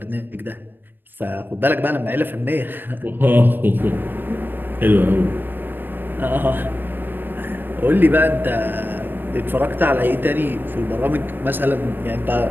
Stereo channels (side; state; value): left; late; 0.094 ms